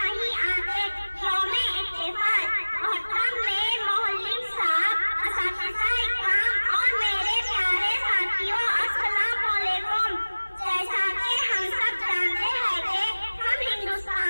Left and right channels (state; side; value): inverted; both; correlation -1.00